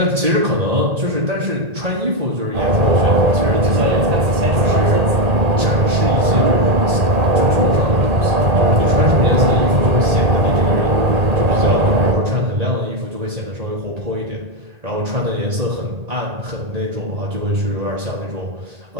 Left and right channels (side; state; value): left; late; 1.8 ms